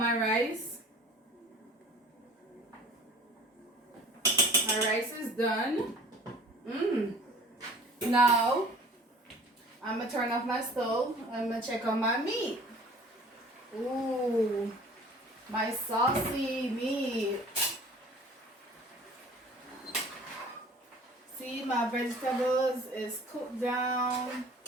rice. My rice is done. Now, I'm going to turn off my stove. I'm going to check out my meat. Ooh, my saucy meat. See, my vegetables is cooked down.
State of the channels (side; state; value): both; normal; correlation 0.48